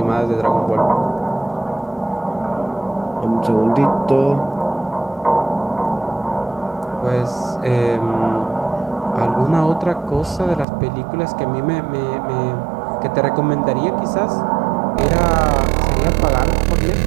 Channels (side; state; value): left; drops out; at 10.7 s